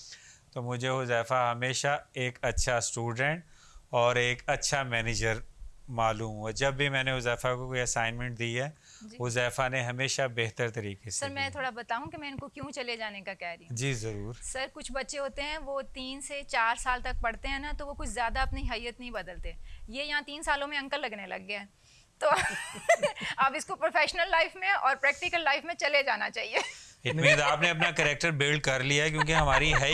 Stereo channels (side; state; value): both; identical; correlation 1.00